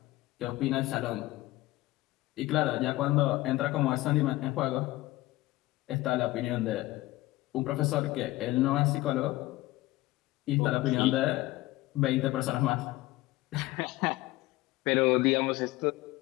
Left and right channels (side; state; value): right; quieter; 18.1 dB